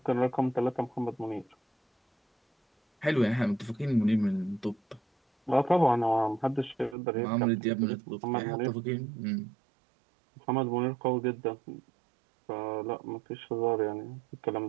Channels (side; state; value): left; drops out; at 7.0 s